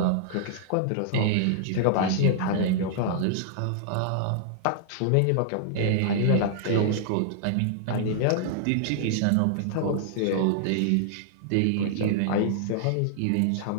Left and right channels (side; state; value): both; different; correlation -0.01